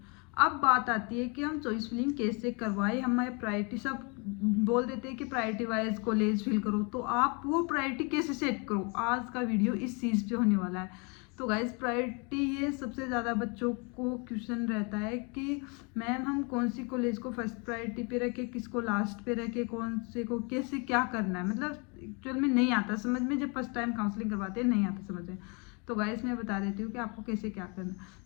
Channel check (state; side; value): quieter; right; 32.5 dB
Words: अब बात आती है कि हम चॉइस फिलिंग कैसे करवाएं, हमें प्रायोरिटी सब बोल देते हैं कि प्रायोरिटी वाइज कॉलेज फिल करो, तो आप वो प्रायोरिटी कैसे सेट करो, आज का वीडियो इस चीज़ पे होने वाला है। तो गाइज प्रायोरिटी ये सबसे ज़्यादा बच्चों को क्वेश्चन रहता है कि मैम हम कौन सी कॉलेज को फर्स्ट प्रायोरिटी पे रखें, किसको लास्ट पे रखें, कौन से को कैसे क्या करना है। मतलब एक्चुअल में नहीं आता समझ में, जब फर्स्ट टाइम काउंसलिंग करवाते हैं नहीं आता समझ में। तो गाइस मैं बता देती हूँ कि आपको कैसे क्या करना है।